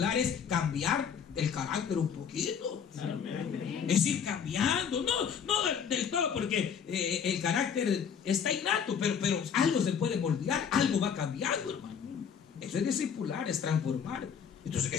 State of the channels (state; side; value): quieter; right; 7.4 dB